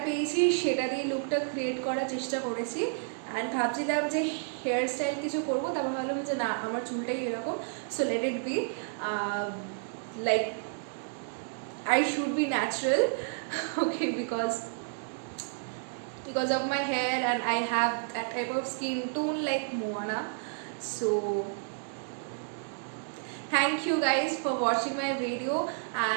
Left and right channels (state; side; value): silent; left; digital silence